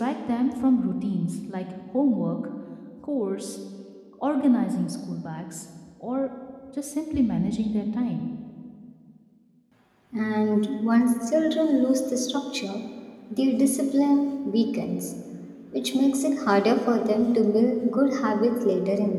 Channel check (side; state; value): both; identical; correlation 1.00